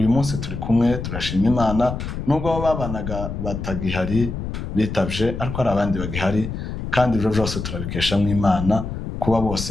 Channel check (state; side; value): noise; left; rumble, 6 dB below the sound